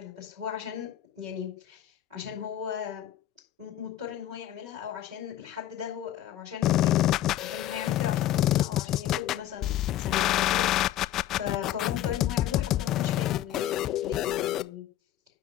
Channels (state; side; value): quieter; right; 12.5 dB